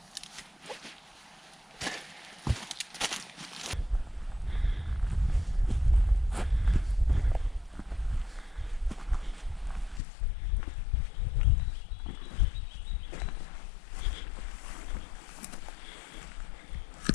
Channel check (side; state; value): right; drops out; at 10.0 s